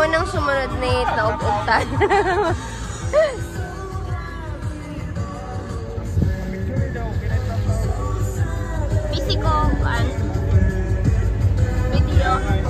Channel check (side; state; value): both; identical; correlation 1.00